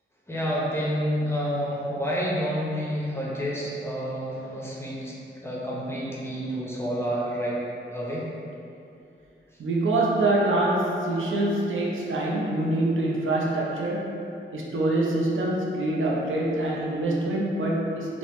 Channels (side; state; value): both; normal; correlation 0.57